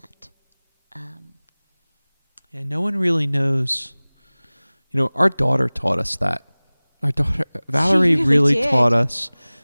Yeah, no one really knows. Our daughter taught us that. Our daughter, Valerie, really did. taught us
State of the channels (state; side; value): inverted; both; correlation -1.00